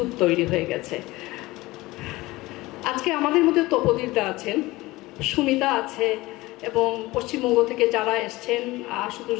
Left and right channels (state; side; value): quieter; right; 20.0 dB